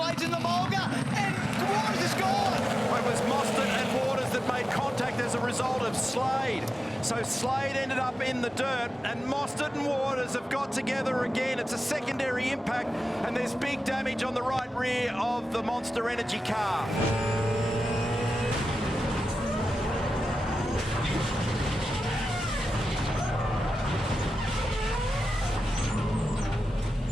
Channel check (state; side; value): normal; both; correlation 0.92